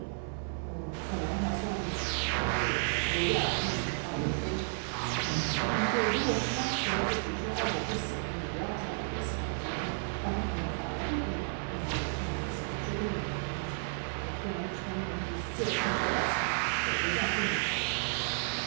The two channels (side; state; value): left; silent; 55 dB below the other